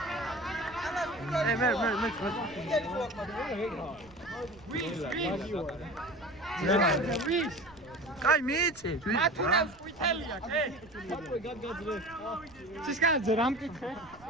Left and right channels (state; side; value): noise; right; rumble, 24 dB below the sound